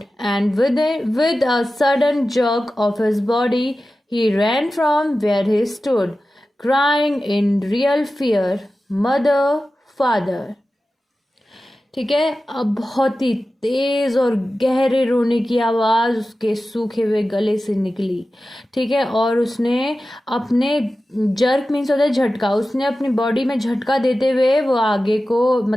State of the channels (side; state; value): both; normal; correlation 0.94